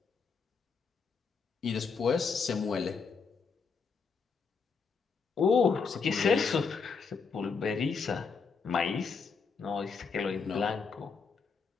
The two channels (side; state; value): right; quieter; 5.4 dB